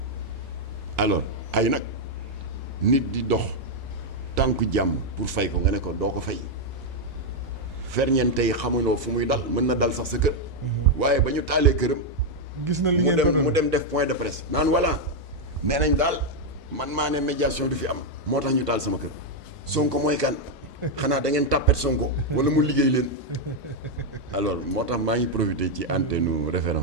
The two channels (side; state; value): both; normal; correlation 0.00